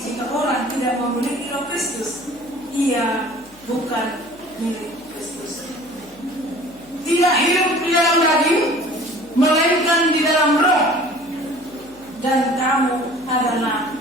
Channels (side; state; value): left; noise; hum, 27 dB below the sound